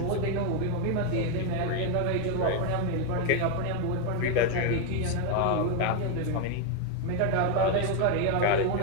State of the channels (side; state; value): both; different; correlation 0.01